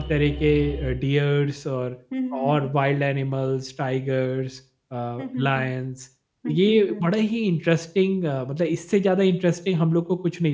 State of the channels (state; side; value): identical; both; correlation 1.00